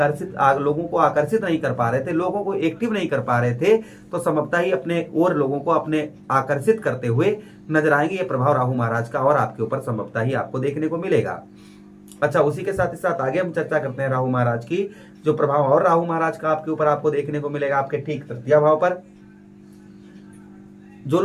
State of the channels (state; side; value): identical; both; correlation 1.00